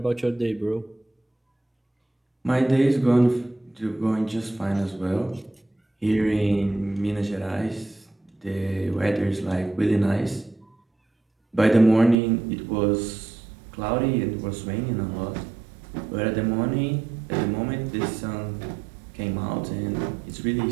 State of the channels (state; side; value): drops out; left; at 12.2 s